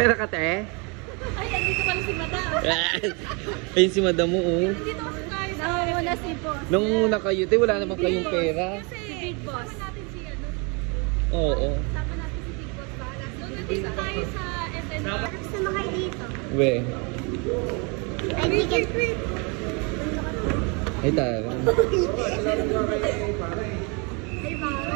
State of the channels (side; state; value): left; quieter; 31.9 dB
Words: ka, te? Ay, andito pala si madam. Ayun si madam mo, oh. Andito kasi tayo sa Nangunguna si boss. Nangunguna kayo, te. Wala naman kayong pera. Si big boss. Natin si ano. Oo. Sama natin si big boss. Doon nandito tayo sa SN. Gusto mo kayo dito? We. Ay, ticket. Ay, tara. Ay,